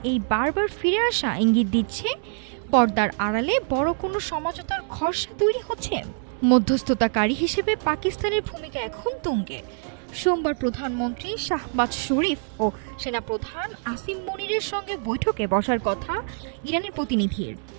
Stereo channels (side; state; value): left; silent; digital silence